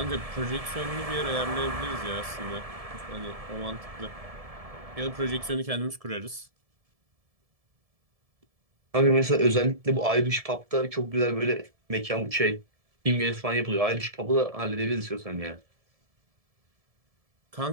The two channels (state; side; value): late; left; 1.7 ms